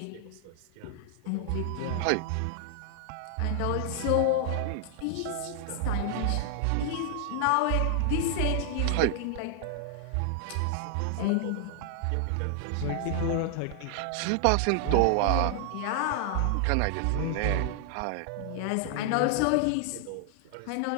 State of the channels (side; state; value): both; different; correlation 0.00